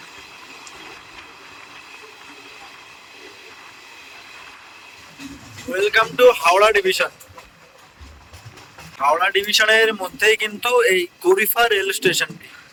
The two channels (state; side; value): identical; both; correlation 1.00